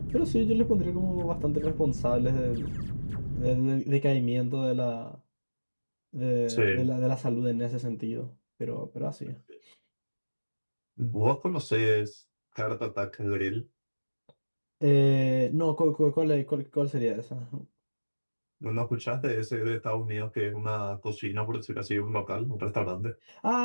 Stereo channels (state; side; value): inverted; both; correlation -1.00